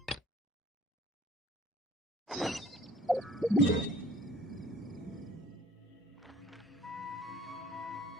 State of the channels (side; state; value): both; normal; correlation 0.52